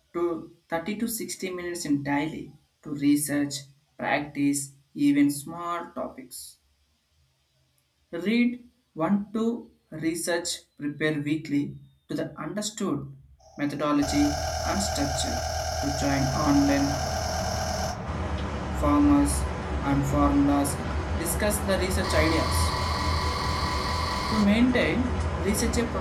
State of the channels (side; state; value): both; identical; correlation 1.00